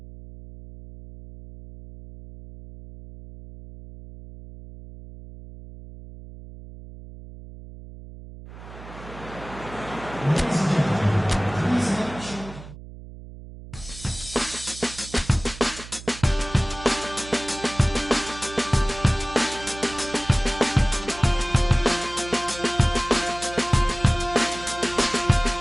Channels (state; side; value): noise; right; hum, 15 dB below the sound